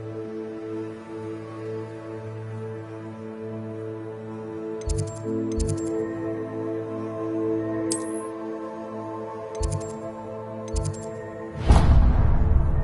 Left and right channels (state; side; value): identical; both; correlation 1.00